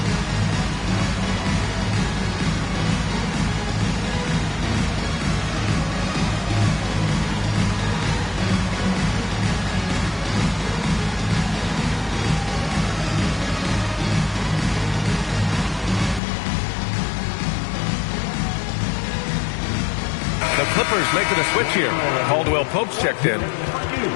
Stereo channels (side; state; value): right; drops out; at 16.2 s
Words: Clippers making a switch here. Caldwell Pope's checked in.